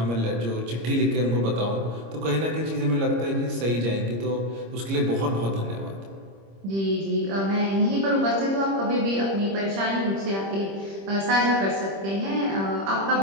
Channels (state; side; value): late; left; 26 ms